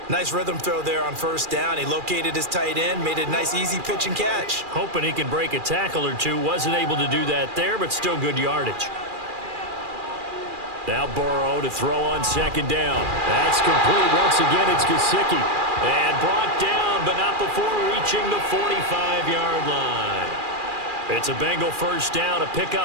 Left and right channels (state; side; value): late; left; 2.4 ms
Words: Nice rhythm throw there on first down. He located his tight end, made a nice easy pitch and catch. Hoping he can break a tackle or two. Wasn't able to do that there, but still good yardage. Now Burrow to throw on second down. That's complete. Once again, it's Gesicki. And brought down, but not before reaching the 45-yard line. It's a Bengal first down, a